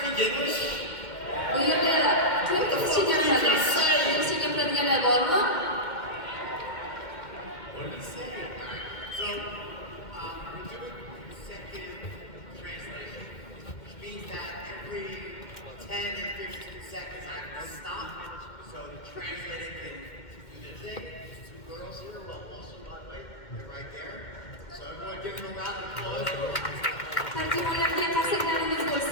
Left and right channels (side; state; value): right; late; 2.1 ms